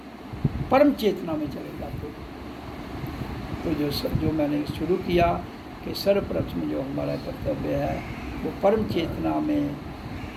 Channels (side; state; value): both; identical; correlation 1.00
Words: परम चेतना में चले जाते हो। तो जो मैंने शुरू किया कि सर्वप्रथम जो हमारा कर्तव्य है वो परम चेतना में